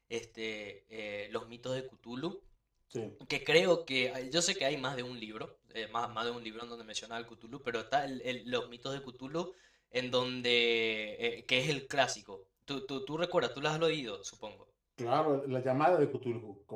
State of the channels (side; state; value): both; identical; correlation 1.00